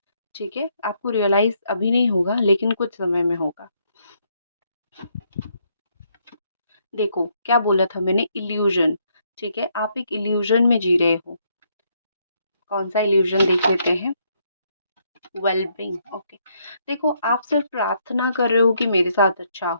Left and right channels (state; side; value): inverted; both; correlation -0.73